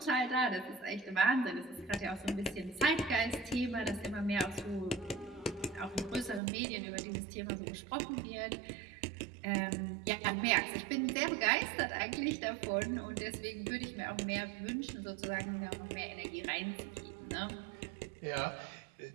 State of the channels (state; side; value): drops out; left; at 6.4 s